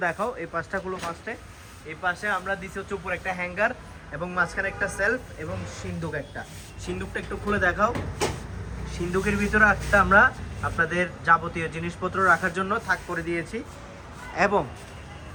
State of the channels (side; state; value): both; identical; correlation 1.00